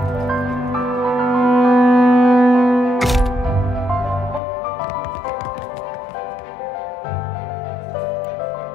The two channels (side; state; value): right; drops out; at 4.4 s